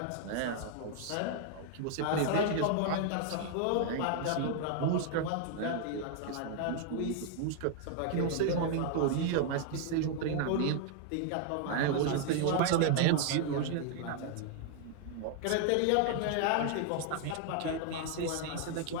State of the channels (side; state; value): both; different; correlation 0.00